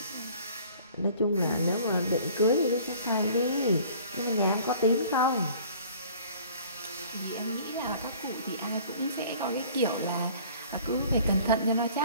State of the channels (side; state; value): both; inverted; correlation -0.51